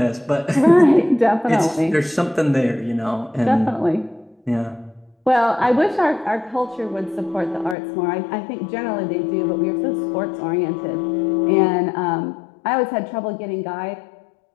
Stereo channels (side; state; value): right; drops out; at 7.8 s